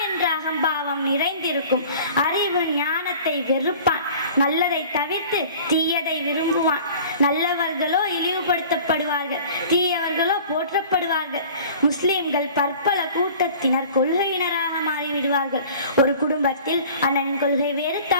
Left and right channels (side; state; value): both; inverted; correlation -0.45